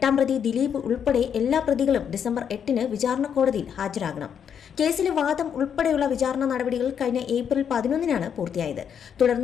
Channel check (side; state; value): right; quieter; 8.0 dB